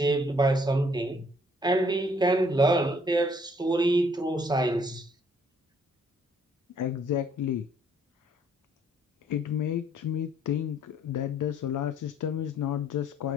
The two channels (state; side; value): normal; both; correlation 0.63